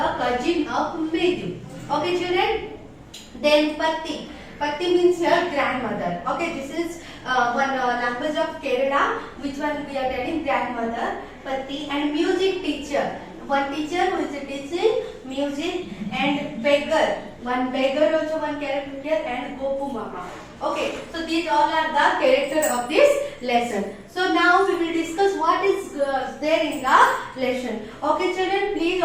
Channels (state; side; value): identical; both; correlation 1.00